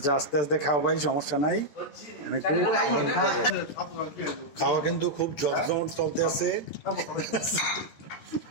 আস্তে আস্তে খাওয়া ভাই, সমস্যা নাই। খাওয়া কিন্তু খুব জমজমট চলতে আছে।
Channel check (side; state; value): right; late; 14 ms